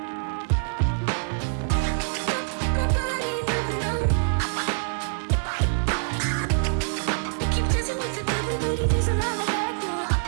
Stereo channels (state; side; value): silent; left; digital silence